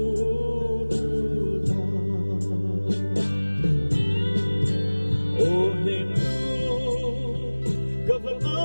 đưa ta ô nền gặp vợ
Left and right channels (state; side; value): inverted; both; correlation -1.00